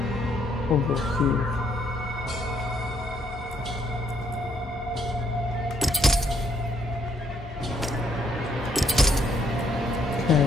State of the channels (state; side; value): normal; both; correlation 0.70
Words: over here. Okay,